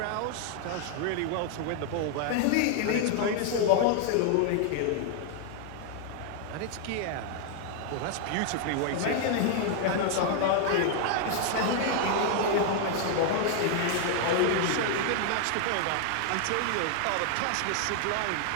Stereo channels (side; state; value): both; different; correlation 0.00